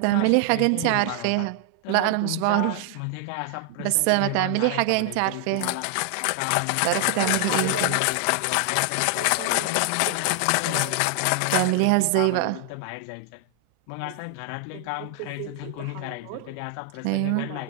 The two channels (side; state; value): both; different; correlation 0.00